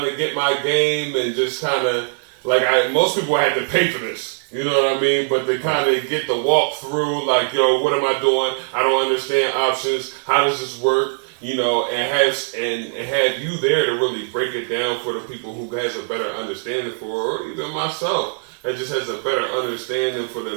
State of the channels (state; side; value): silent; left; 65 dB below the other